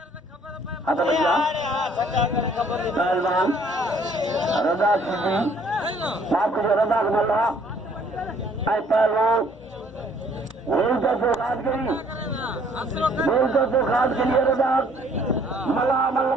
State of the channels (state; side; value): normal; both; correlation 0.61